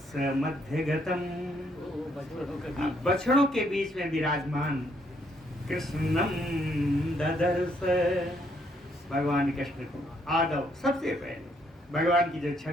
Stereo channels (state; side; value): normal; both; correlation 0.71